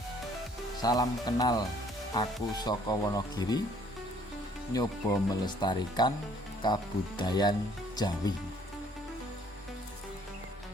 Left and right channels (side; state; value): both; normal; correlation 0.61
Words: Salam kenal, aku saka Wonogiri, nyoba melestarikan kabudayan Jawi.